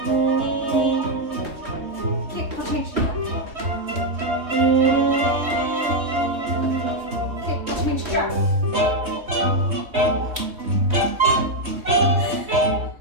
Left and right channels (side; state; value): left; late; 3.2 ms